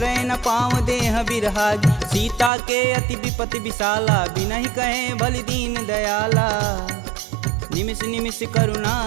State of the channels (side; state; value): left; drops out; at 2.5 s